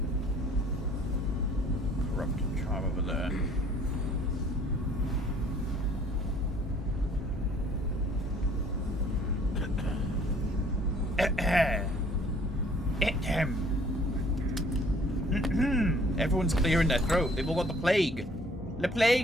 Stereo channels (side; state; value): both; normal; correlation 0.57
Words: Everyone's clearing their throat. They've all got the plague. The